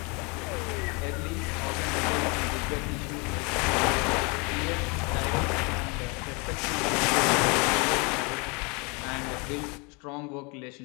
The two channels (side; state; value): right; quieter; 30.5 dB